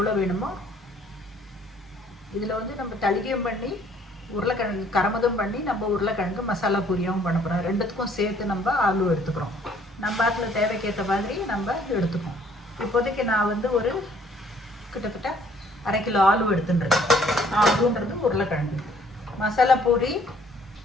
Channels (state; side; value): normal; both; correlation 0.60